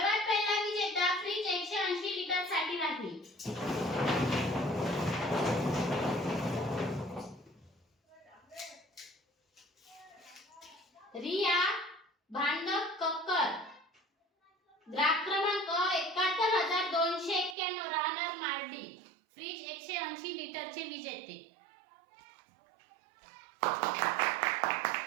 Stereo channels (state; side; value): drops out; left; at 17.6 s